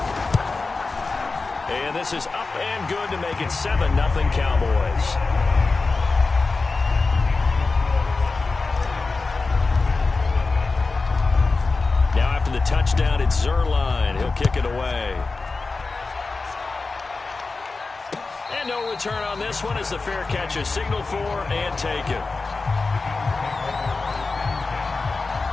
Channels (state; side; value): quieter; right; 3.9 dB